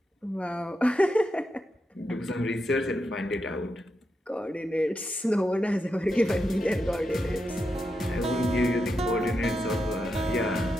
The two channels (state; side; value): normal; both; correlation 0.86